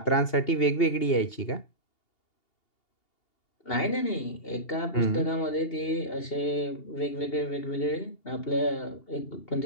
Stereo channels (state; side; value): late; right; 2.8 ms